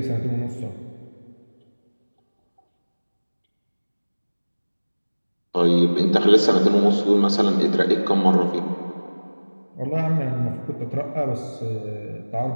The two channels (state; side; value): inverted; both; correlation -1.00